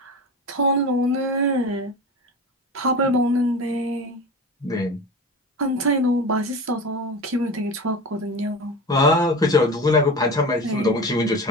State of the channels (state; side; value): normal; both; correlation 0.30